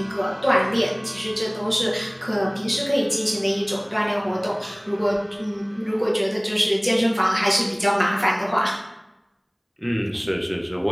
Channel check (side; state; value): both; identical; correlation 1.00